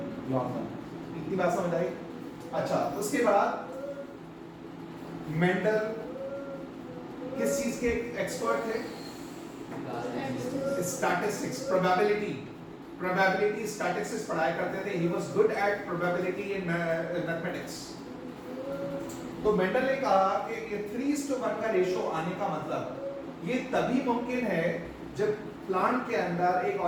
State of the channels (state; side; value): identical; both; correlation 1.00